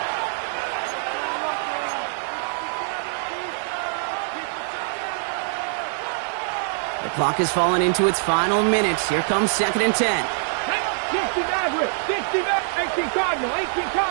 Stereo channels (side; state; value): left; silent; digital silence